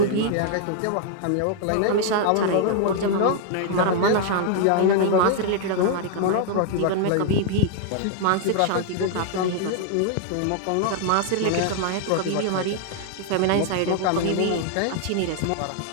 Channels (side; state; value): both; different; correlation 0.00